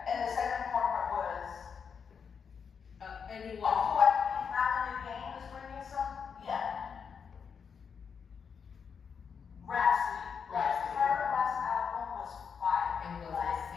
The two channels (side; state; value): right; quieter; 6.5 dB